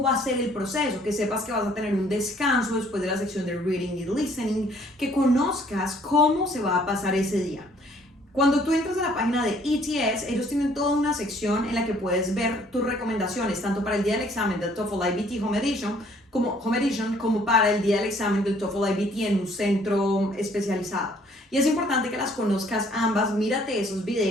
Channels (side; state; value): both; normal; correlation 0.61